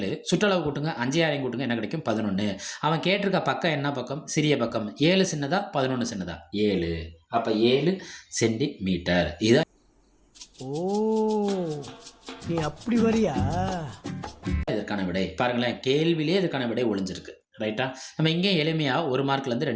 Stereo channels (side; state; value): both; identical; correlation 1.00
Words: சுற்றளவு கூட்டுங்க 5 6 கூட்டுங்க என்ன கிடைக்கும்? 11. அவன் கேட்டிருக்க பக்கம் என்ன பக்கம்? சிறிய பக்கம். 7 சின்னதா 11 சின்னதா? 7. அப்போ 7 சென்டிமீட்டர். இதான். ஓ, நீ அப்படி வரியா? இதற்கான விடை பாருங்களேன். கேள்வியிலே இதற்கான விடை ஒளிஞ்சிருக்கு. ரைட்டா? நம்ம இங்கே எளிமையாக 1 மார்க்லேருந்து